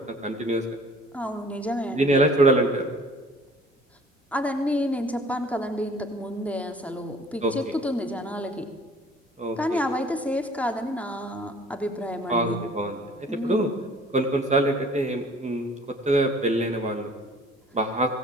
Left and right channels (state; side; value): normal; both; correlation 0.52